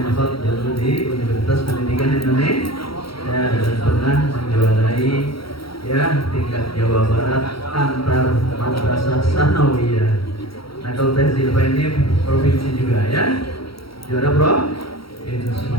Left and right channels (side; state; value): right; late; 0.75 ms